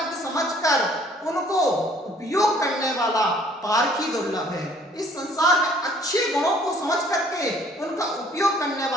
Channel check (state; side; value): normal; both; correlation 0.58